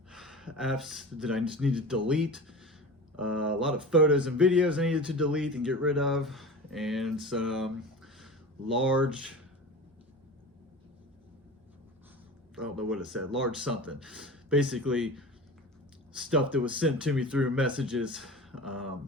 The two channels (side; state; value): both; normal; correlation 0.33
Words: that I just need to delete, a lot of photos and videos I needed to delete and get rid of, and some large, I don't know what it said, large something. Basically, stuff that was sent to me through messages. I